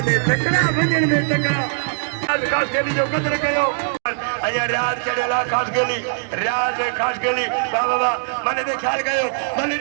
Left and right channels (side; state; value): left; silent; digital silence